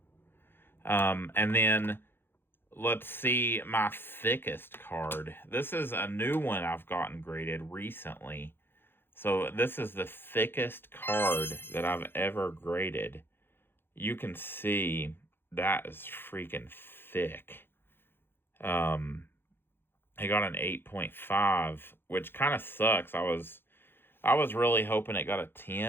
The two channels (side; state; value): right; late; 0.10 ms